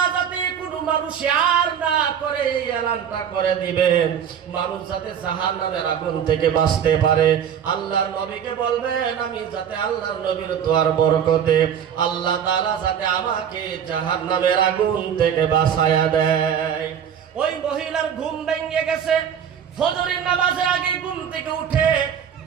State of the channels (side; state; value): left; quieter; 8.5 dB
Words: যাতে কোনো মানুষ আর না করে এই এলানটা করে দিবেন, মানুষ যাতে জাহান্নামের আগুন থেকে বাঁচতে পারে। আল্লাহর নবীকে বলবেন আমি যাতে আল্লাহর নবীর দোয়ার বরকতে আল্লাহ তাআলা যাতে আমাকে জাহান্নামের আগুন থেকে বাঁচায়া দেয়। ওই মহিলার ঘুম ভেঙে গেছে, ফজরের নামাজের আগে ঘুম থেকে উঠে